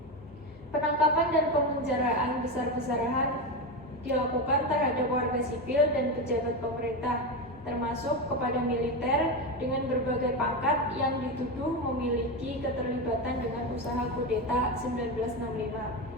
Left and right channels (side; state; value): both; normal; correlation 0.15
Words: Penangkapan dan pemenjaraan besar-besaran dilakukan terhadap warga sipil dan pejabat pemerintah, termasuk kepada militer dengan berbagai pangkat yang dituduh memiliki keterlibatan dengan usaha kudeta 1965.